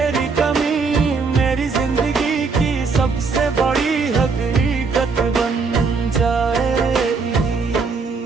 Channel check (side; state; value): left; quieter; 4.7 dB